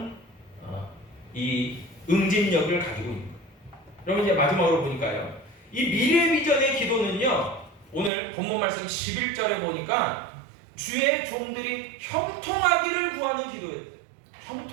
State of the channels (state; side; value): drops out; left; at 8.1 s